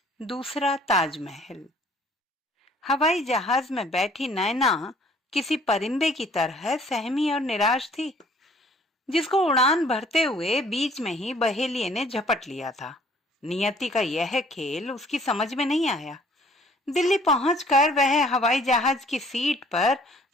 दूसरा ताजमहल। हवाई जहाज में बैठी नैना किसी परिंदे की तरह सहमी और निराश थी, जिसको उड़ान भरते हुए बीच में ही बहेलिये ने झपट लिया था। नियति का यह खेल उसकी समझ में नहीं आया। दिल्ली पहुंचकर वह हवाई जहाज की सीट पर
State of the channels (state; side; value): normal; both; correlation 0.57